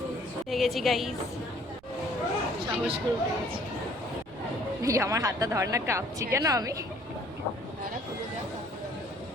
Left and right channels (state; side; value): noise; right; rumble, 25 dB below the sound